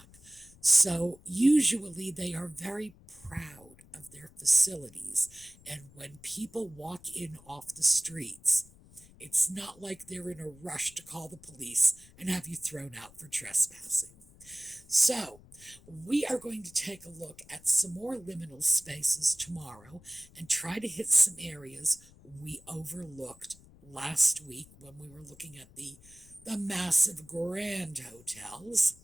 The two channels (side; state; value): left; noise; rumble, 24 dB below the sound